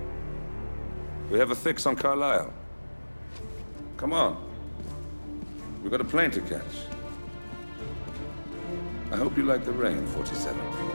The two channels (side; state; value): both; inverted; correlation -1.00